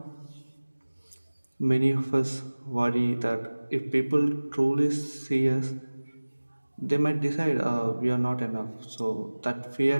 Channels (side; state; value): both; inverted; correlation -1.00